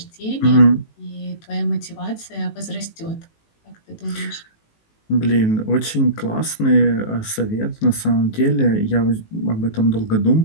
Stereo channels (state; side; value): late; right; 19 ms